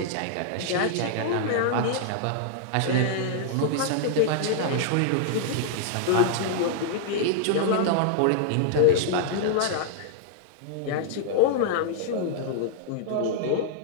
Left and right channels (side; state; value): both; different; correlation -0.01